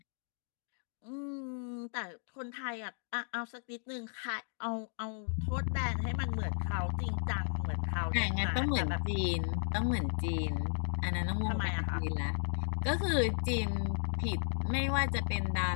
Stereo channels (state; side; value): silent; right; digital silence